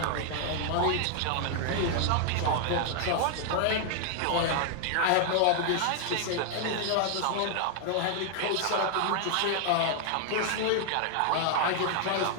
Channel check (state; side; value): different; both; correlation 0.00